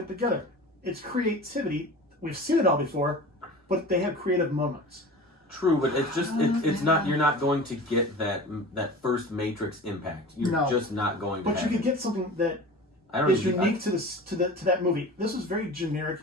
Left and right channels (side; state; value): both; normal; correlation 0.37